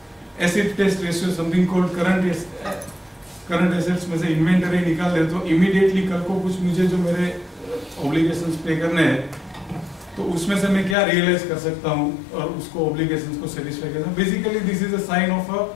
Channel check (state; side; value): drops out; right; at 11.0 s